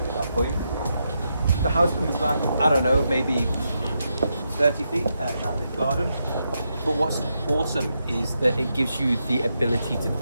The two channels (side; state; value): both; inverted; correlation -0.84